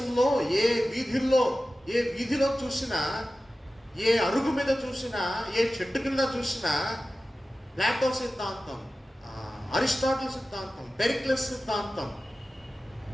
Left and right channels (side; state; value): both; normal; correlation 0.95